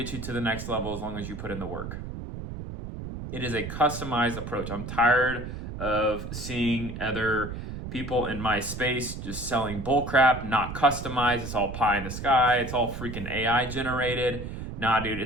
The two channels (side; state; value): right; noise; rumble, 8 dB below the sound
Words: you to the next level as long as you put in the work. It is a customized approach. I'm tired of seeing other people in my space just selling bullcrap, not customized. It's all pie in the sky. It's all freaking AI generated. Nah, dude,